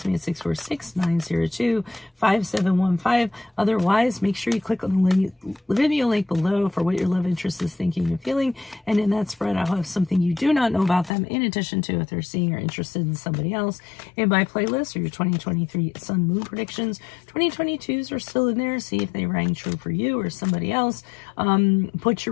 me at 646-902-5715. Otherwise, make sure you click on the video link below for what your love interest is thinking and feeling. And in that spread, I'll have something you do not know about them, in addition to if they're seeing or interested in somebody else. In my playlist are your 2023 Sun Moon predictions. 2022s are still in there. See if they rang true for you or somebody else. Put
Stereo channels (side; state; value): right; drops out; at 11.1 s